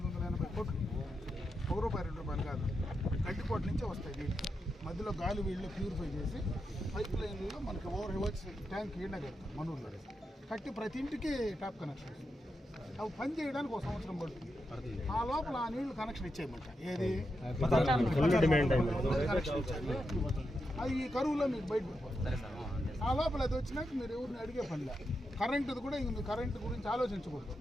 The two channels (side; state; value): both; normal; correlation 0.86